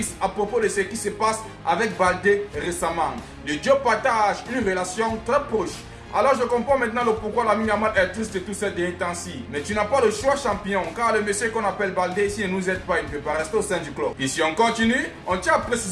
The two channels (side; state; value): both; identical; correlation 1.00